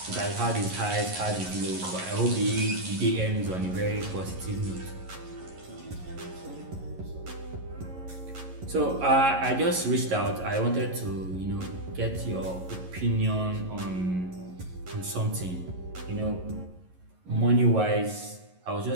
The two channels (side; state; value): left; late; 11 ms